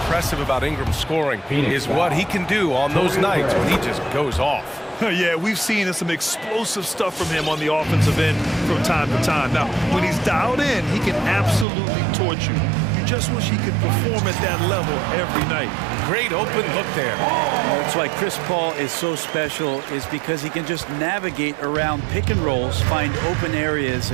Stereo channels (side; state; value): left; drops out; at 11.7 s